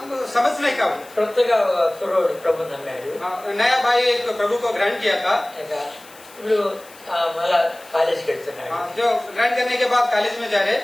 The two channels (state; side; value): noise; left; hiss, 22 dB below the sound